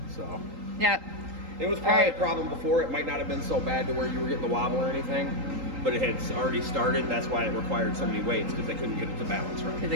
So Yep. it was probably Alright. a problem before. It might not have been so bad to where you were getting the wobble or anything, but it had already started. That's why it required so many weights, because they couldn't get it to balance right. Because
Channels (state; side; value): late; left; 3.8 ms